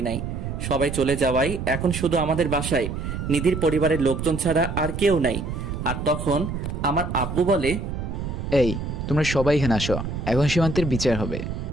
নাই। সবাই চলে যাওয়ায় এখন শুধু আমাদের বাসায় নিধির পরিবারের লোকজন ছাড়া আর কেউ নাই। আর তখন আমার আব্বু বলে, এই তোমরা সবাই এখানে আসো, এখন সীমান্তের বিচার হবে।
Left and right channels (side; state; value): right; noise; rumble, 5 dB below the sound